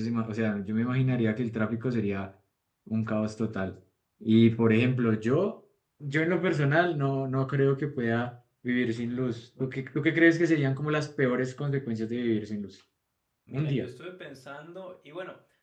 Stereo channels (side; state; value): both; identical; correlation 1.00